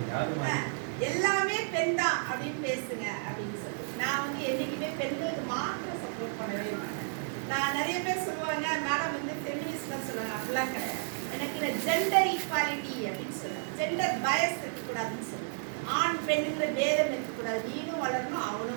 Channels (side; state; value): left; silent; 57 dB below the other